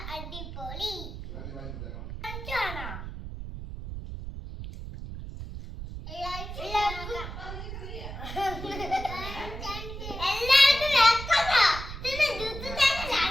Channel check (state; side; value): noise; right; rumble, 9 dB below the sound